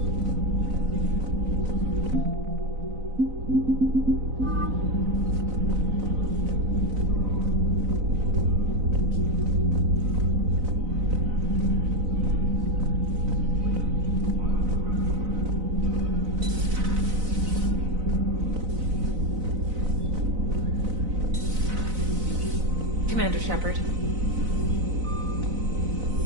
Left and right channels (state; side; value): late; left; 4.0 ms